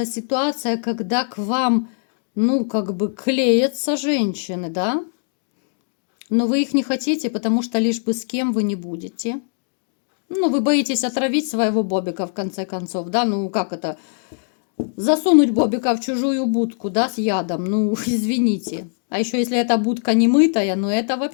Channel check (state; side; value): silent; right; 65 dB below the other